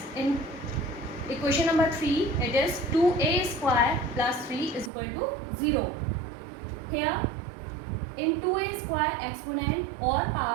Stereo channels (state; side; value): drops out; left; at 4.9 s